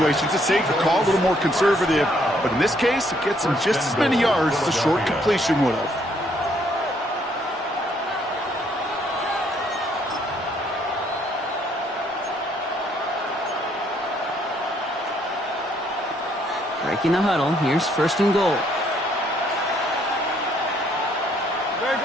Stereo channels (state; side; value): normal; both; correlation 0.68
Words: It's a safer call, a little more conservative, but in this case, it gets them just as many yards as a short completion would have. Breaking the huddle. Here's 1st and goal. Great.